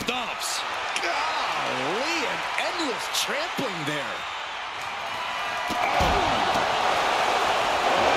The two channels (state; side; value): identical; both; correlation 1.00